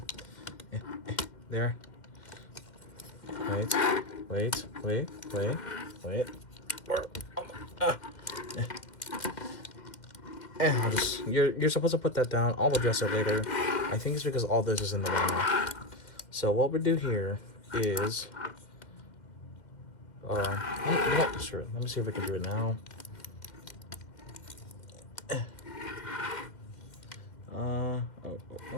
There. Wait. I'll just, you're supposed to put that down. I'll address it later. I think it's because all this is in the way now. So what we do here is, sure. Let me see if I can do it now.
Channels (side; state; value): right; late; 2.1 ms